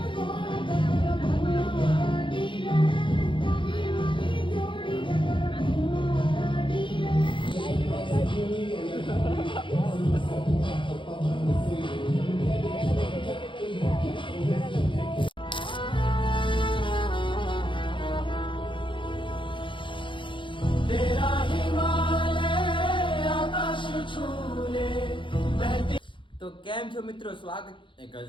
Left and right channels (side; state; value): right; late; 0.24 ms